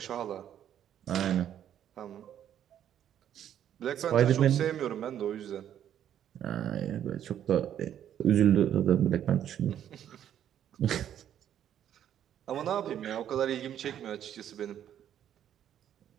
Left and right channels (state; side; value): quieter; left; 10.3 dB